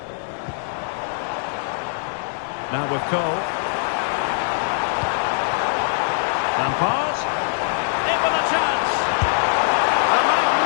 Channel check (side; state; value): right; silent; digital silence